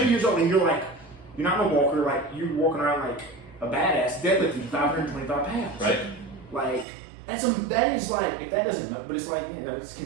years old and you're not a walker, you're walking around like a badass deadlifting 525 pounds. Right. That is if that doesn't, but it's it's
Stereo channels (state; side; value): drops out; left; at 6.9 s